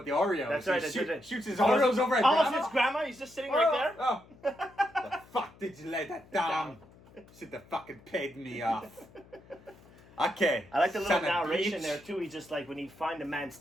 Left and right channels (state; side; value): noise; left; hum, 25 dB below the sound